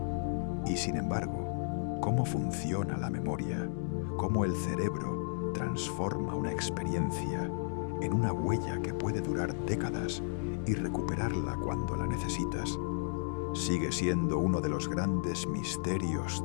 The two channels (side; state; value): right; silent; 55 dB below the other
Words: Y sin embargo, ¿cómo funciona la memoria? ¿Cómo el cerebro transforma una experiencia en una huella que puede durar décadas y recuperarla cuando la necesitas? Sigue siendo uno de los grandes misterios